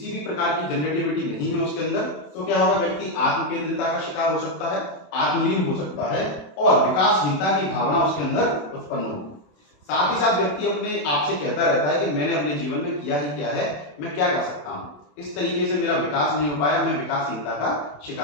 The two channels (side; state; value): right; late; 27 ms